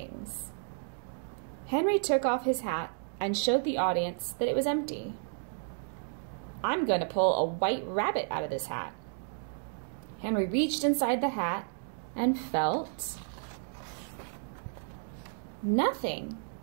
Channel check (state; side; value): silent; left; digital silence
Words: Henry took off his hat and showed the audience that it was empty. "I'm going to pull a white rabbit out of this hat." Henry reached inside the hat and felt nothing.